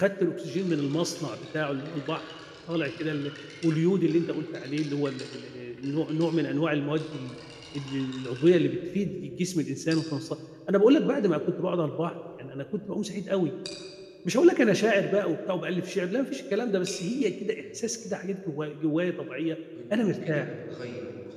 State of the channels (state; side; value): identical; both; correlation 1.00